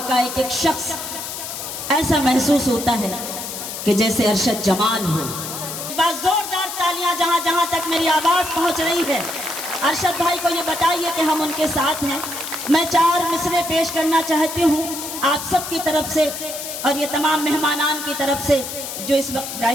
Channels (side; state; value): left; noise; hiss, 7 dB below the sound